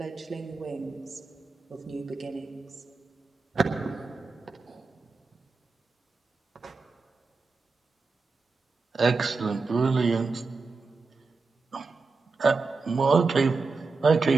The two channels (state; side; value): quieter; left; 4.1 dB